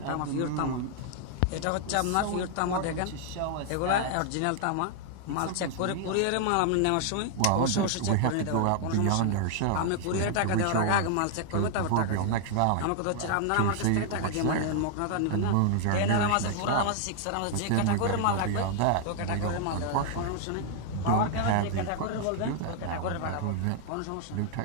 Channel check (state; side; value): different; both; correlation 0.00